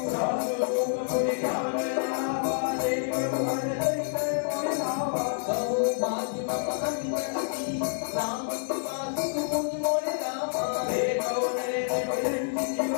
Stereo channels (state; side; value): silent; right; digital silence